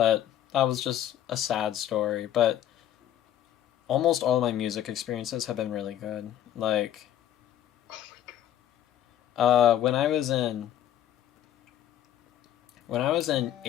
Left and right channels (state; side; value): quieter; right; 11.3 dB